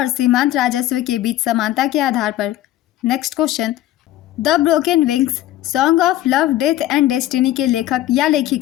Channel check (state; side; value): quieter; right; 14.2 dB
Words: सीमांत राजस्व के बीच समानता के आधार पर। Next question, the broken wings song of love, death and destiny के लेखक या